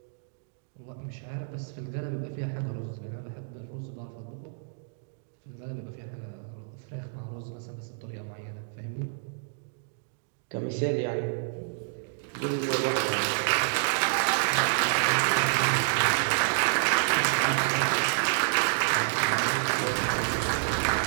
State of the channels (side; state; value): left; silent; digital silence